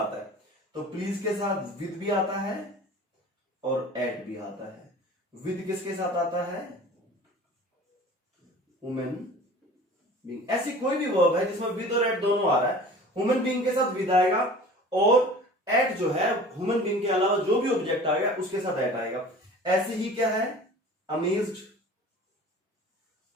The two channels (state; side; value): normal; both; correlation 0.42